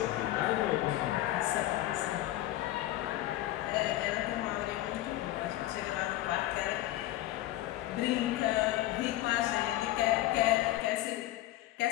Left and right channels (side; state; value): right; quieter; 15.2 dB